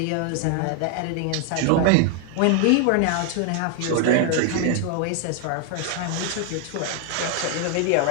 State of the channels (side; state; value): both; different; correlation 0.00